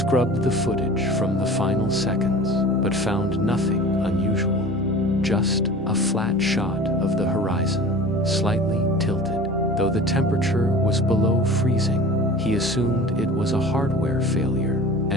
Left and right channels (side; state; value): both; normal; correlation 0.40